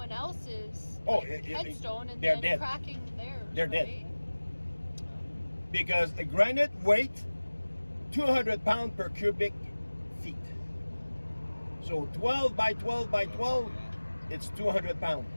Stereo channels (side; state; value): both; inverted; correlation -1.00